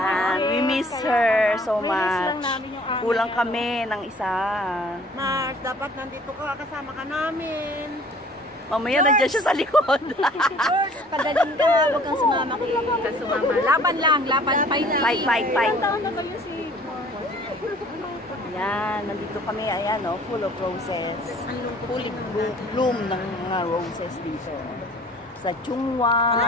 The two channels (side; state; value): both; normal; correlation 0.53